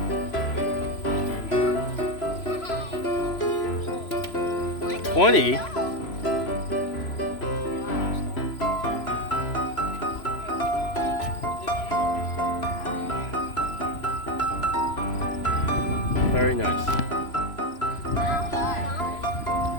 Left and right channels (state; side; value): late; right; 3.0 ms